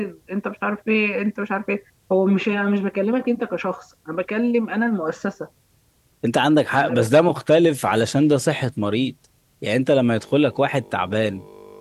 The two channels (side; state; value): both; identical; correlation 1.00